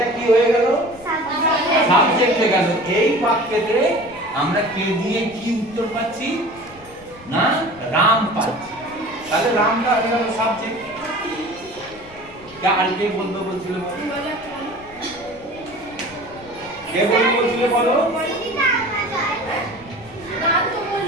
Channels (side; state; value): left; noise; rumble, 22 dB below the sound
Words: কি হয়ে গেল? সাবজেক্ট হয়ে গেল। এই বাক্যেতে আমরা কে দিয়ে কি উত্তর পাচ্ছি না? রাম পাচ্ছি। তাহলে রামটা হয়ে গেল সাবজেক্ট। আর কে বলতে বলছিল? কে বলতে বলছিল বলো?